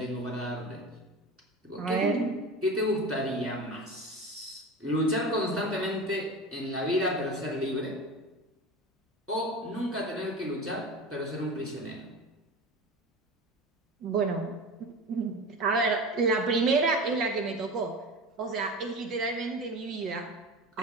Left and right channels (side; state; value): both; normal; correlation 0.30